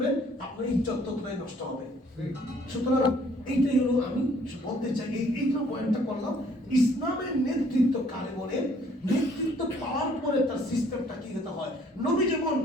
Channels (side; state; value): both; normal; correlation 0.61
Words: আপনার ইজ্জত ততটাই নষ্ট হবে। সুতরাং এইটাই হলো আমি বলতে চাই, এইটা পয়েন্টটা করলাম। ইসলামের নেতৃত্ব কারে বলে? নেতৃত্ব পাওয়ার পরে তার সিস্টেমটা কি হতে হয়। নবী যেমন